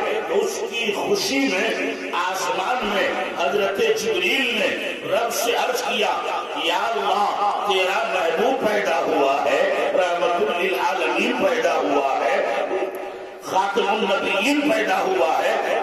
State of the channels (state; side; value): identical; both; correlation 1.00